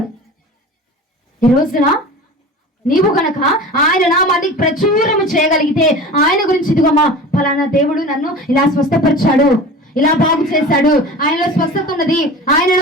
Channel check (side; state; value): both; normal; correlation 0.36